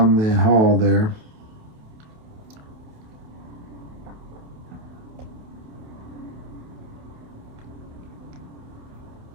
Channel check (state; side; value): late; left; 28 ms